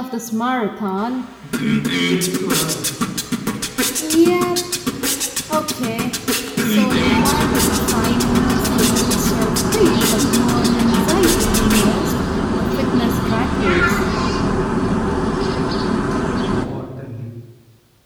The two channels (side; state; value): both; identical; correlation 1.00